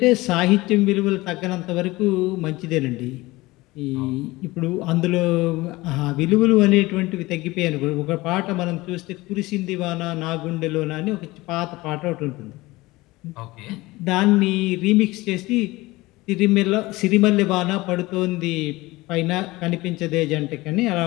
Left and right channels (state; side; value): quieter; right; 20.4 dB